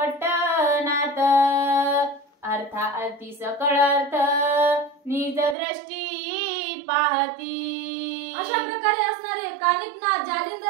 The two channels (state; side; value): drops out; left; at 5.6 s